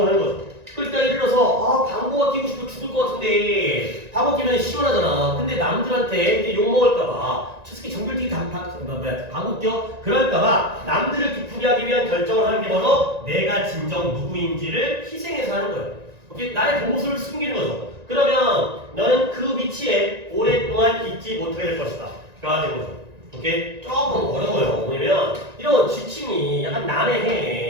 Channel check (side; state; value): left; late; 1.9 ms